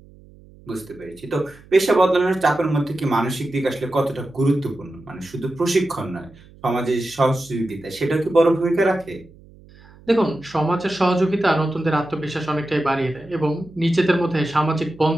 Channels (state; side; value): noise; right; hum, 24 dB below the sound